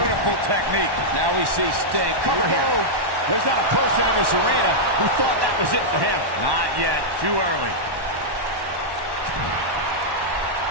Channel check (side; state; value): left; late; 1.1 ms